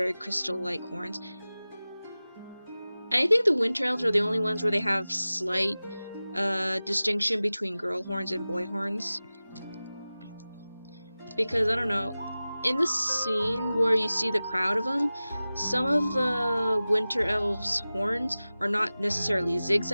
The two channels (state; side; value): inverted; both; correlation -0.97